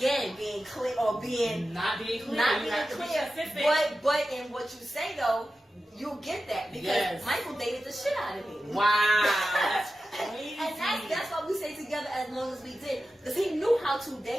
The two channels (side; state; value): both; normal; correlation 0.93